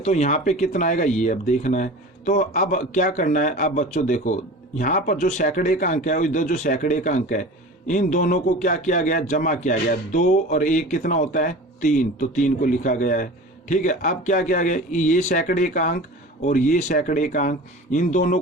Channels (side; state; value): both; normal; correlation 0.36